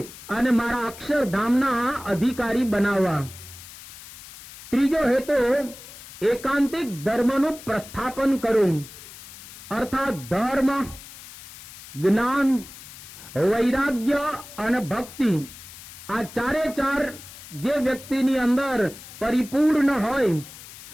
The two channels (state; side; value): noise; left; hiss, 16 dB below the sound